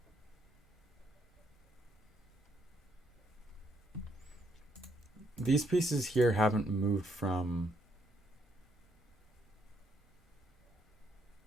These pieces here haven't moved from...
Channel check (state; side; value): normal; both; correlation 0.73